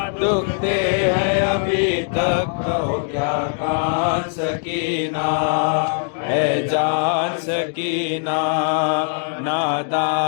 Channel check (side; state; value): right; silent; digital silence